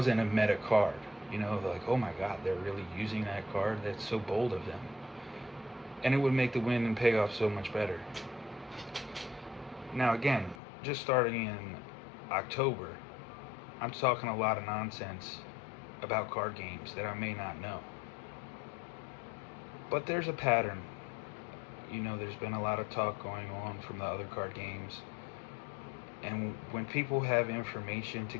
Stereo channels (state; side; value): drops out; right; at 10.6 s